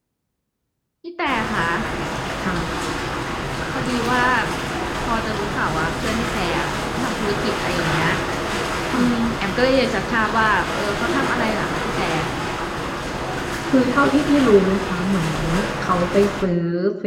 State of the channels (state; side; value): identical; both; correlation 1.00